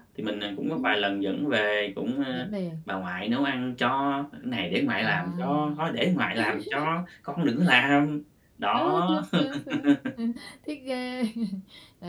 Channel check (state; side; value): identical; both; correlation 1.00